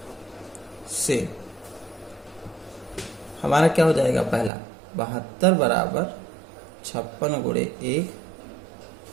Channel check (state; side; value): drops out; left; at 4.5 s